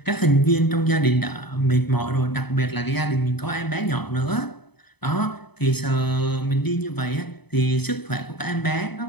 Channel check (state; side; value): late; right; 0.98 ms